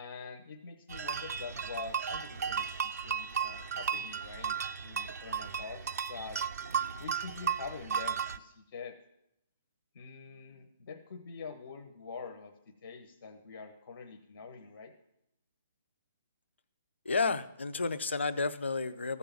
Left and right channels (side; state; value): both; inverted; correlation -0.45